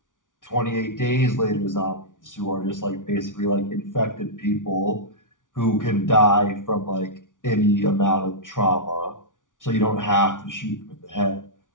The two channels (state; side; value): late; right; 0.88 ms